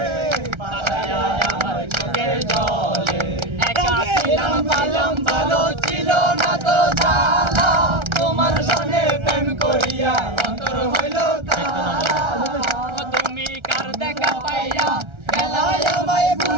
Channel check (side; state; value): left; late; 1.3 ms